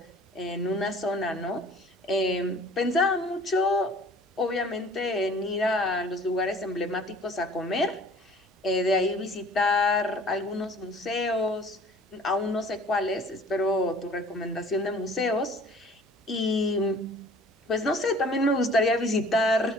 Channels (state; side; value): normal; both; correlation 0.50